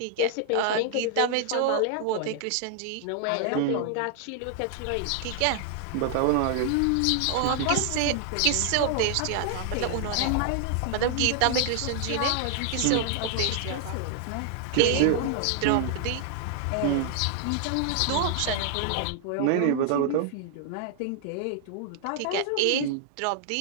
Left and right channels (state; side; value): different; both; correlation 0.00